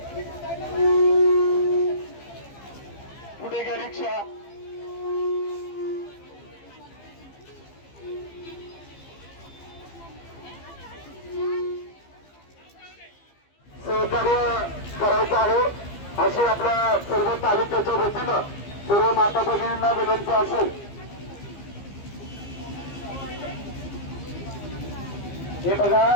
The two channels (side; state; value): right; late; 15 ms